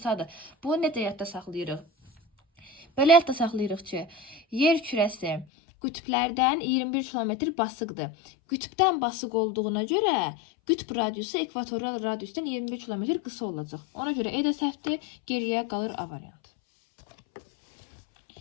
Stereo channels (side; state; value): right; drops out; at 5.5 s